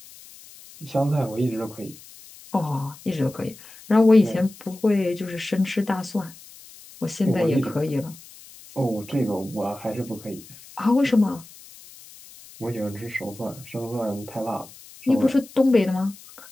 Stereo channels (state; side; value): noise; left; hiss, 20 dB below the sound